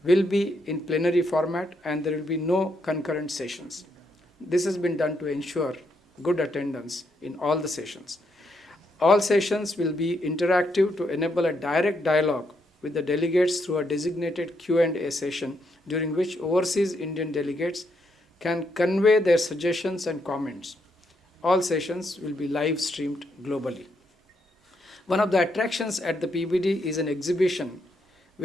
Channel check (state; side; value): normal; both; correlation 0.78